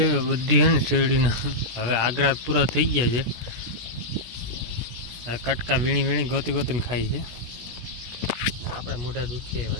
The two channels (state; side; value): late; left; 17 ms